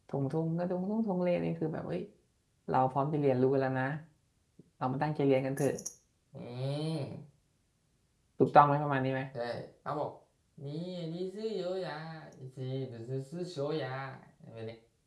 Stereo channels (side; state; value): both; identical; correlation 1.00